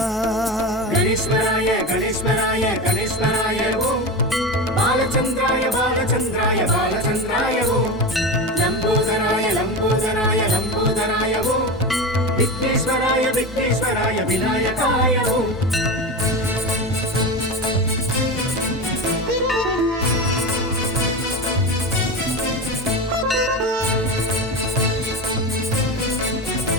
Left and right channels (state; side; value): normal; both; correlation 0.23